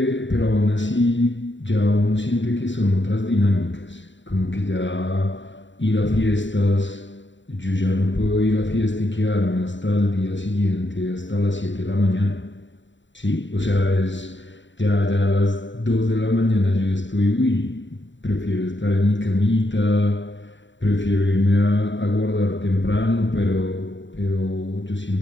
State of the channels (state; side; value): late; right; 0.54 ms